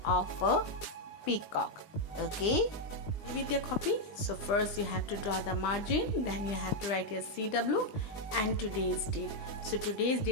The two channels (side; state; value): right; late; 20 ms